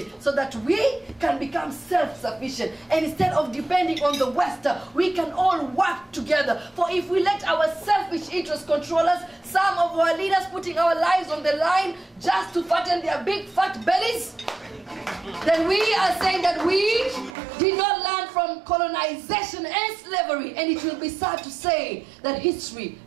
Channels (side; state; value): left; drops out; at 17.4 s